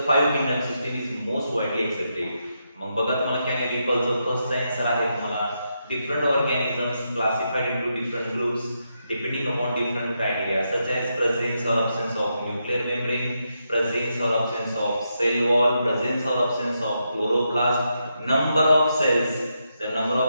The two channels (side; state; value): both; inverted; correlation -0.83